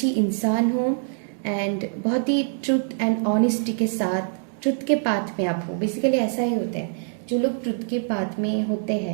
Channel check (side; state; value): left; silent; digital silence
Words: इंसान हो, एंड बहुत ही ट्रुथ एंड ऑनेस्टी के साथ ट्रुथ के पाथ में आप हो। बेसिकली ऐसा ही होता है, जो लोग ट्रुथ के पाथ में होते